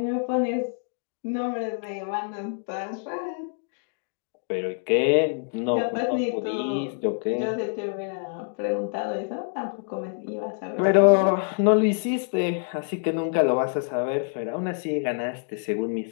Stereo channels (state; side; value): silent; right; digital silence